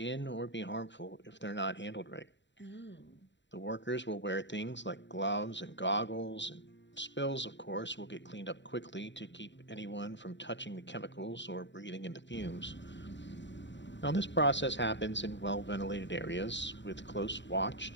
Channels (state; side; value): late; right; 0.52 ms